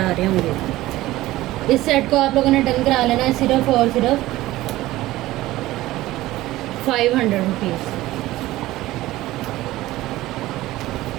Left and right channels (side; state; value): left; quieter; 16.8 dB